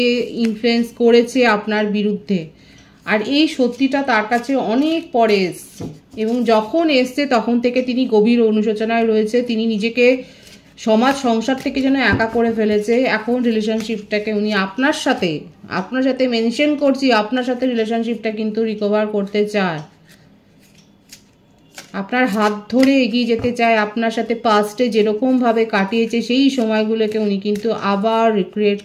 ইনফ্লুয়েন্স করেছে আপনার বিরুদ্ধে, আর এই সত্যিটা তার কাছে অনেক পরে এসছে এবং যখন এসছে তখন থেকে তিনি গভীর অনুশোচনায় রয়েছে। তিনি নিজেকে সমাজ সংসার থেকে যেন একা করে ফেলেছে। এখন রিলেশনশিপটাকে উনি আপনার সাথে মেনশন করছি, আপনার সাথে রিলেশনশিপটা কিন্তু রিকভার করতে চায়, আপনার হাত ধরে এগিয়ে যেতে চায়। আপনার সাথে পাস্টে যেরকমভাবে কাটিয়েছে সেই সময়গুলোকে উনি কিন্তু আবার রিক্রিয়েট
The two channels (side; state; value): both; identical; correlation 1.00